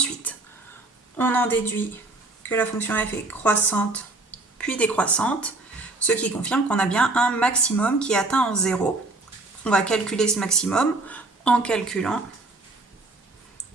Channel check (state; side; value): quieter; left; 3.1 dB